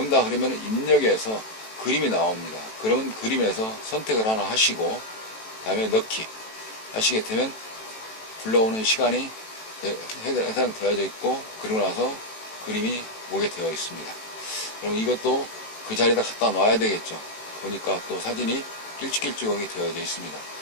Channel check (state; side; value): late; right; 18 ms